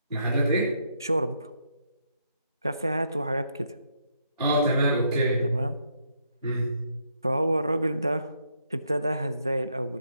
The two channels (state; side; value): inverted; both; correlation -0.75